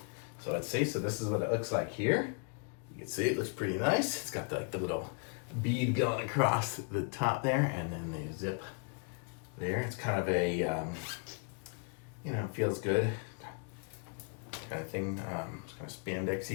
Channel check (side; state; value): right; quieter; 37.8 dB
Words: So let's see. So this is what it looks like here. You can see it looks pretty nice. It's got the little bead going across the top there, and then the zip there. It's kind of a, feels good kind of thing. It's kind of